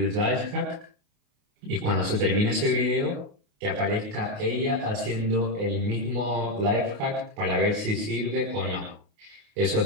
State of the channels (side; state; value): left; late; 28 ms